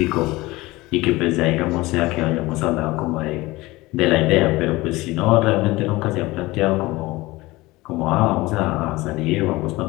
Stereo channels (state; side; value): quieter; right; 20.3 dB